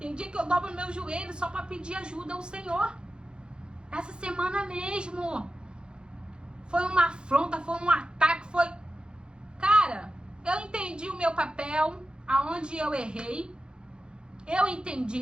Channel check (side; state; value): left; late; 0.051 ms